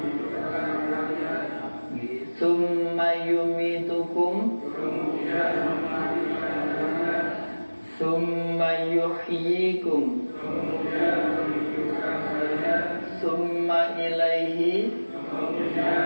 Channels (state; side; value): inverted; both; correlation -1.00